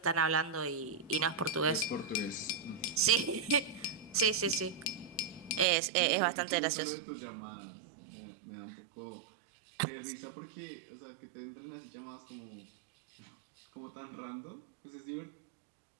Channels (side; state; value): left; drops out; at 5.7 s